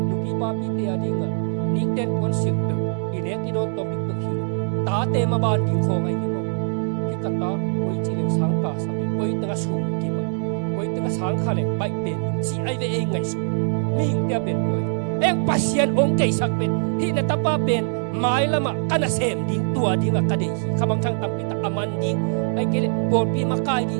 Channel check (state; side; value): silent; left; digital silence